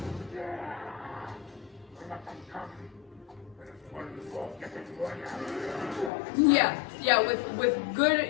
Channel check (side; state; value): right; drops out; at 6.1 s